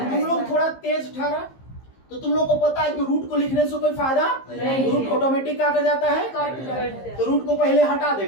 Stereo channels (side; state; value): right; late; 15 ms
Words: तुम लोग थोड़ा तेज ठहरा, तो तुम लोग को पता है कि रूट को लिखने से कोई फायदा नहीं। रूट ऑटोमेटिक क्या कर जाता है, कट कर तो रूट को पहले हटा